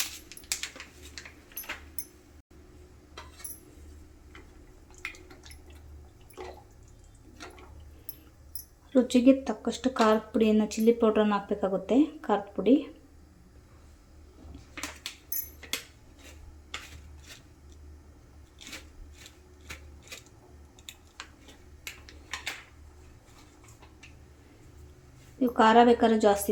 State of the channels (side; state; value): both; identical; correlation 1.00